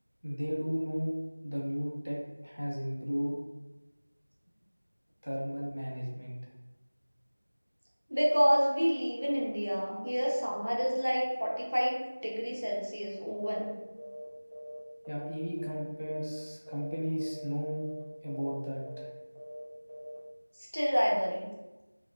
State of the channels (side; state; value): both; inverted; correlation -1.00